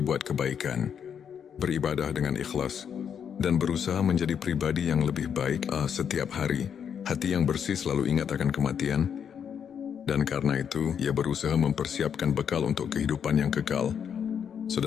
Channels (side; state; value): right; quieter; 7.8 dB